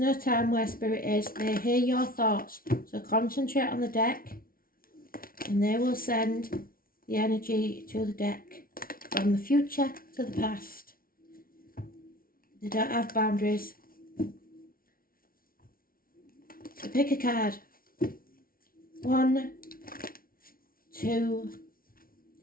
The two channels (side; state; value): right; late; 0.43 ms